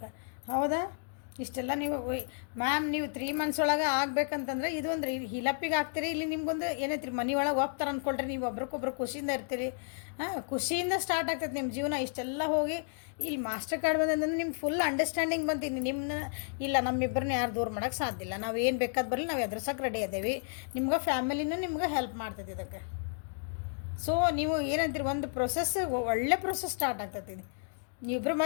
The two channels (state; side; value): silent; right; digital silence